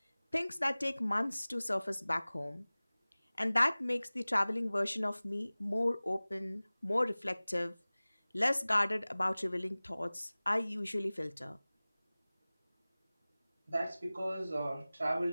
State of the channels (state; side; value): inverted; both; correlation -0.99